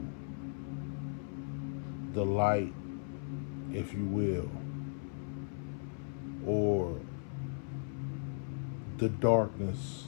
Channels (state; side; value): silent; right; 53 dB below the other